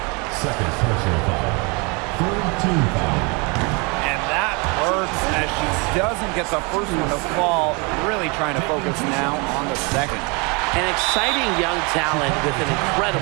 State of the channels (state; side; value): quieter; left; 30.3 dB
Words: Second personal foul. Third team foul. And that works as she doesn't get the first one to fall. Really trying to focus now on the second. An exciting young talent with an